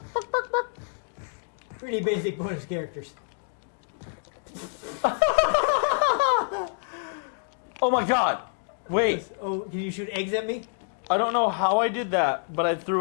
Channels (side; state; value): right; silent; digital silence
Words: pretty basic bonus characters. Oh my god! Wait, Oh, can you shoot eggs at me? I don't know how I did that, but I